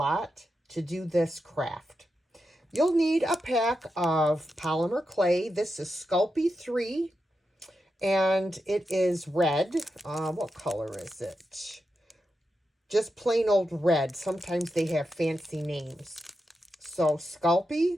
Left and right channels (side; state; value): both; normal; correlation 0.88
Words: to do this craft. You'll need a pack of polymer clay. This is Sculpey 3, and it is red. What color is it? Just plain old red. Sometimes they have fancy names. So